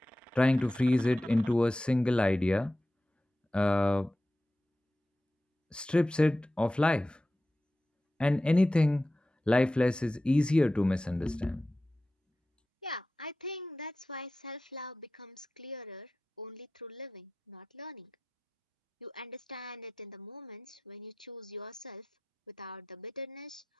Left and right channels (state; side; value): normal; both; correlation 0.94